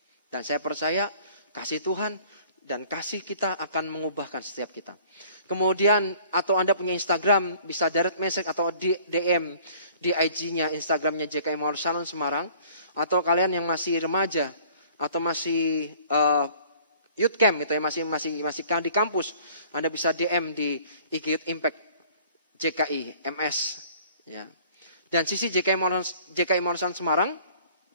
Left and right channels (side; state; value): both; inverted; correlation -0.53